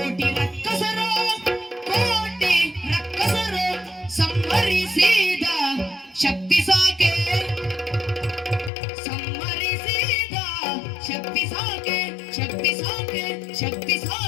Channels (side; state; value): right; drops out; at 8.7 s